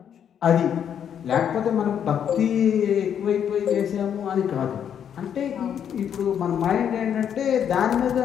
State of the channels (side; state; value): right; quieter; 8.7 dB